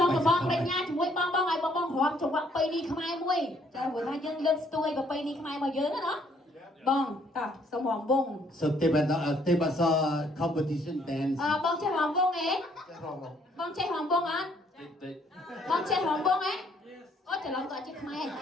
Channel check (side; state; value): both; normal; correlation 0.65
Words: ុំបងប្រាជ្ញាជាមួយបងឲ្យបងរាំចង្វាក់បីនេះខ្មែរមួយចាព្រោះថាយើងលើកស្ទួយប្របីនេះខ្មែររបស់យើងណាបងតោះសុំរំវង So they was a competition dance បងចេះរំវងទេបងចេះរំវងអត់បងចេះរំវងទេអូច្រឡំក៏ចេះខ្មែរ